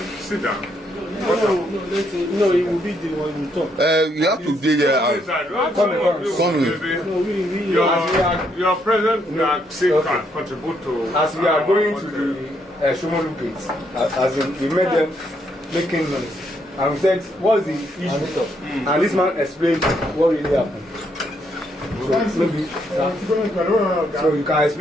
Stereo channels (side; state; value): both; normal; correlation 0.74